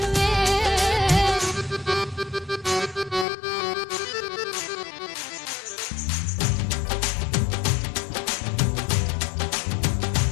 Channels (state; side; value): drops out; right; at 3.2 s